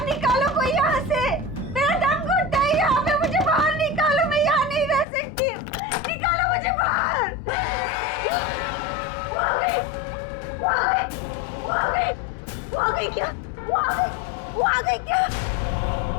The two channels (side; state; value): right; drops out; at 5.1 s